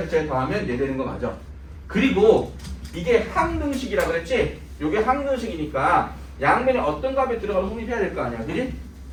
더하면 얘 되는 거 맞아. 그리고 이게 항등식이라 그랬지? 요게 항등식이니까 양면에 어떤 값이 들어가서 성립해야 될 거 아니야. 그지?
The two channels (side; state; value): both; identical; correlation 1.00